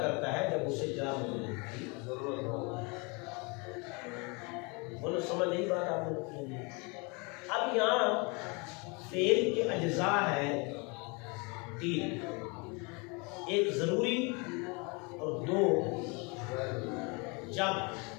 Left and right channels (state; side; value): quieter; right; 30.3 dB